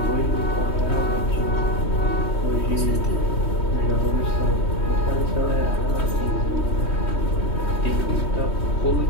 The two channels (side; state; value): right; late; 3.2 ms